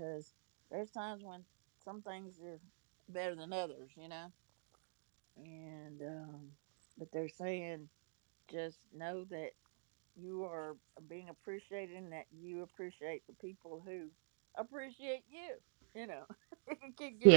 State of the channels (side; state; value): left; silent; digital silence